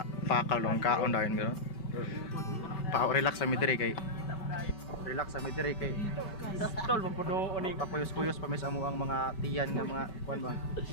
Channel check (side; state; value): right; late; 5.2 ms